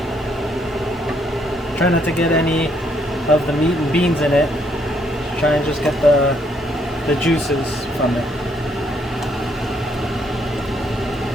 Try not to get any of the meat and beans in it. Try and just get the juices from it.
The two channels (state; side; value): normal; both; correlation 0.71